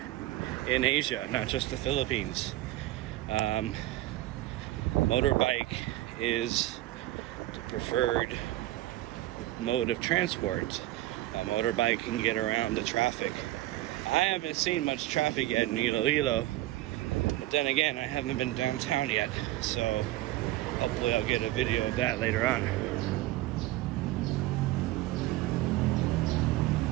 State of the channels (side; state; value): left; quieter; 16.2 dB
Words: in Asia, not just the Philippines. Motorbike is the preferred mode of transport. A motorbike can get around the traffic. I haven't seen much traffic yet in Iloilo, but then again, I haven't been downtown yet, so hopefully I'll get a video of that later on.